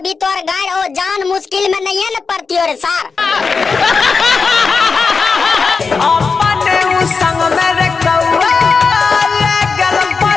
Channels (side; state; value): right; quieter; 4.9 dB